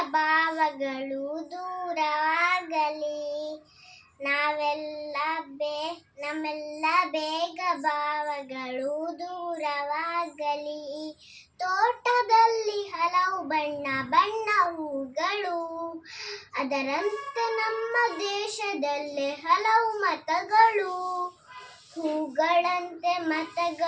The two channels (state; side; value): identical; both; correlation 1.00